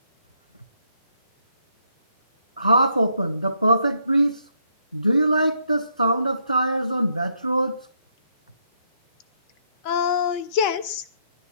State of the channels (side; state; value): both; inverted; correlation -0.74